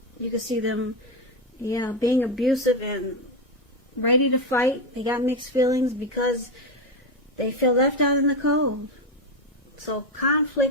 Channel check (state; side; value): normal; both; correlation 0.11